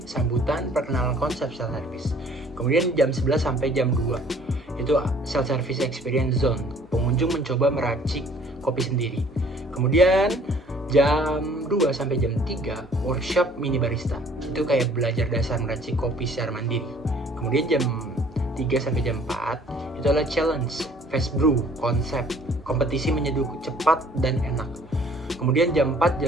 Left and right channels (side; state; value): both; normal; correlation 0.56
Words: sambutan, perkenalan konsep self-service. Kemudian jam 11 sampai jam 2. Itu self-service experience zone. Pengunjung mencoba meracik kopi sendiri. Kemudian jam 2 sampai jam 3 workshop mini barista. Itu kayak belajar dasar meracik kopi secara mandiri. Kemudian jam 3 sampai jam 4 itu adalah challenge, fast brew, konsep, kompetisi menyeduh cepat dan enak. Kemudian jam